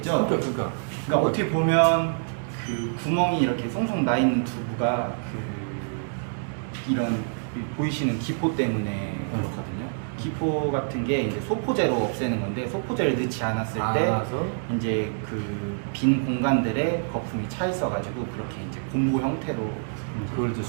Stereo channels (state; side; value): silent; left; digital silence